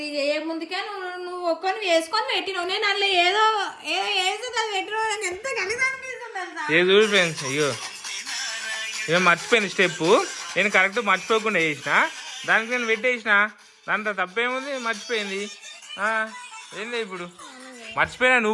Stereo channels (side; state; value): both; identical; correlation 1.00